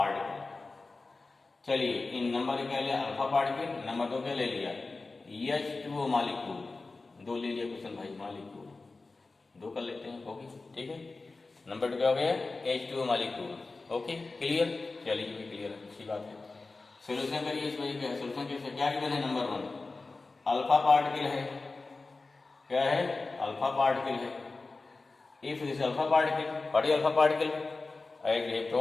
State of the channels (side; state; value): right; quieter; 3.6 dB